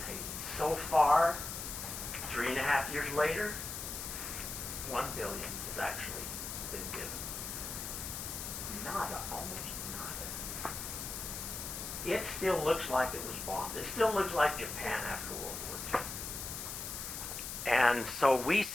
Haiti. So far, 3.5 years later, $1 billion has actually been given. Nada, almost nada. It still looks like it was bombed. It still looks like Japan after World War II. And so we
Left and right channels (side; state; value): left; noise; hiss, 6 dB below the sound